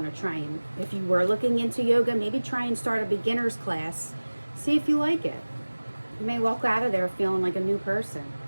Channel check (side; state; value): both; inverted; correlation -1.00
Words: to try and, if you were looking into yoga, maybe try and start a beginner's class. See if you like it. You may walk out of there feeling like a new person.